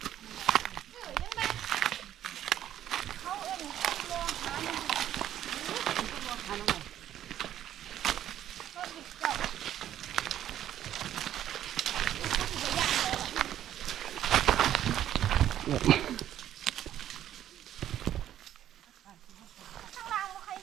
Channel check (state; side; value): quieter; left; 11.4 dB